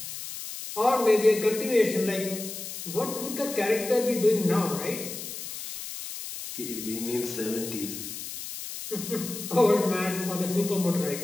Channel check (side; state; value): left; noise; hiss, 8 dB below the sound